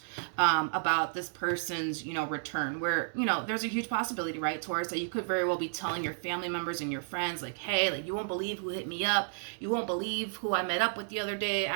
about this person's, you know, return, where, you know, there's a huge possibility, right, Taurus, that you could very well be telling your family members and your friends, like, hey, like, you won't believe who hit me up. You won't believe who I met up with the other day. I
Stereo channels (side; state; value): left; silent; digital silence